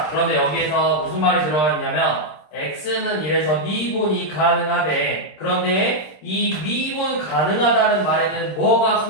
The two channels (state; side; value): late; right; 26 ms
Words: 그런데 여기에서 무슨 말이 들어가 있냐면 x는 이래서 미분이 가능하대. 그런데 이 미분 가능하다는 말에는 뭐가